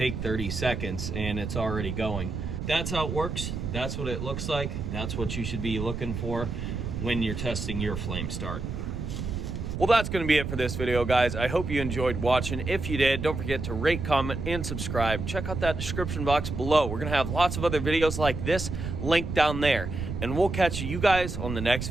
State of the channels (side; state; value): right; noise; rumble, 5 dB below the sound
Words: 30 seconds and it's already going. That's how it works. That's what it looks like. That's what you should be looking for when you're testing your flame start. Well, that's going to be it for this video, guys. I hope you enjoyed watching. If you did, don't forget to rate, comment, and subscribe. Check out that description box below. We're going to have lots of other videos like this linked down there. And we'll catch you guys on the next